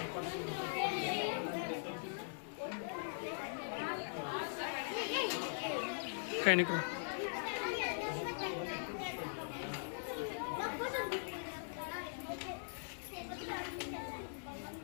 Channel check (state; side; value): silent; right; digital silence